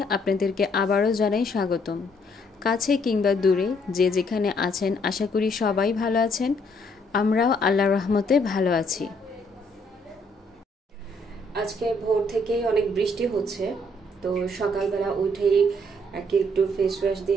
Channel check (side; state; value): both; normal; correlation 0.68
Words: আপনাদেরকে আবারও জানাই স্বাগতম। কাছে কিংবা দূরে যে যেখানে আছেন আশা করি সবাই ভালো আছেন। আমরাও আল্লাহর রহমতে ভালো আছি। আজকে ভোর থেকেই অনেক বৃষ্টি হচ্ছে, তো সকালবেলা উঠেই একটু ফেস ওয়াশ